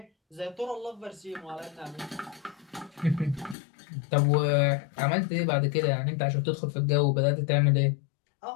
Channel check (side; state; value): right; drops out; at 3.6 s